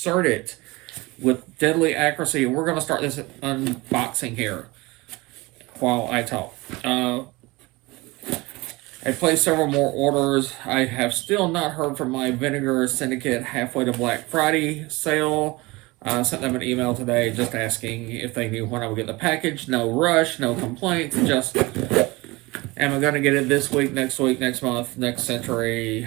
with deadly accuracy. We're going to start this unboxing here while I talk. I placed several more orders. I have still not heard from my Vinegar Syndicate halfway to Black Friday sale. I sent them an email today just asking if they knew when I would get the package. No rush, no complaints, just am I going to get it this week, next month, next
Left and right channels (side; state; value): left; quieter; 22.8 dB